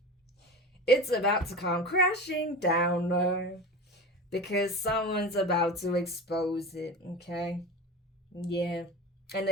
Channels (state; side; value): normal; both; correlation 0.30